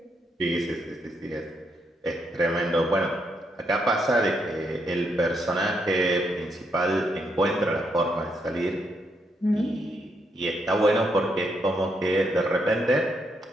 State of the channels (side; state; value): both; normal; correlation 0.78